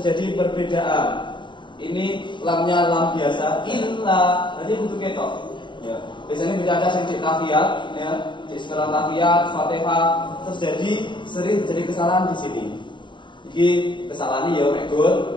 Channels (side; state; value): right; late; 0.23 ms